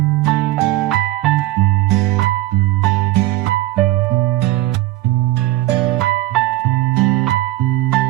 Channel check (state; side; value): quieter; left; 16.5 dB